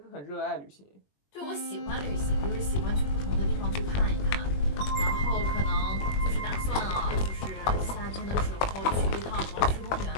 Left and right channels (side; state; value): right; late; 21 ms